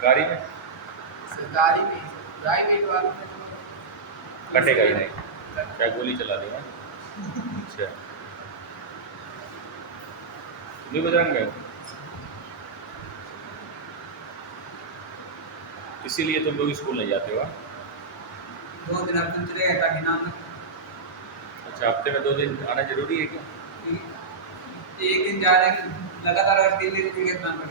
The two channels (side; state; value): left; quieter; 4.4 dB